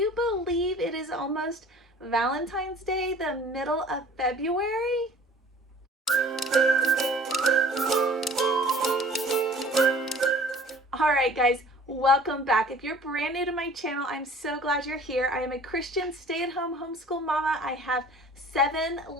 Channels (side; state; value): both; normal; correlation 0.49